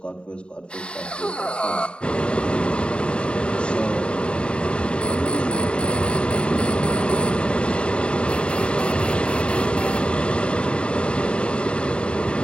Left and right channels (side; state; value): right; late; 0.054 ms